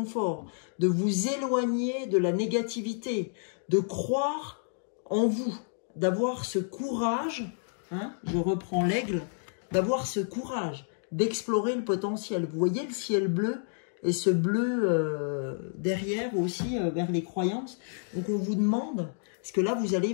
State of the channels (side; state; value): right; silent; digital silence